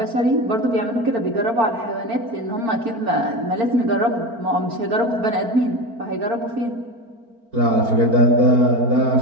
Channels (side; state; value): left; late; 4.4 ms